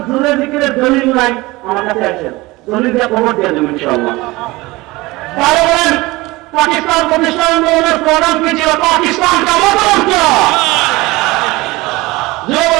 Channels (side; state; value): left; quieter; 21.3 dB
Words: জোরের জিকিরের দলিল নাই, আমার কাছে আসেন, দলিল দিয়ে খবর দিয়ে দেবেন ইনশাআল্লাহ। তাহলে বলেন পাকিস্তান প্রতিষ্ঠা আন্দোলনের প্রধান কি ছিল? পাকিস্তান কা মতলব কিয়া,